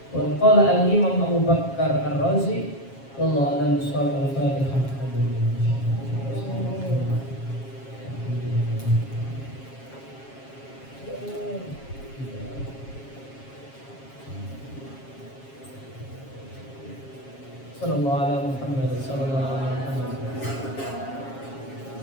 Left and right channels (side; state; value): right; late; 7.4 ms